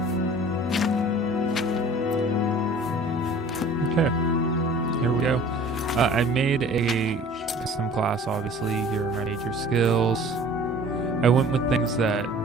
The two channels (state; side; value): normal; both; correlation 0.47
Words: Okay, here we go. I made a custom class, obviously. Here are my major skills. I went with things that